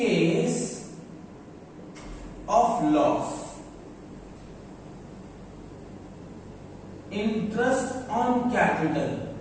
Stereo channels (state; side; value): identical; both; correlation 1.00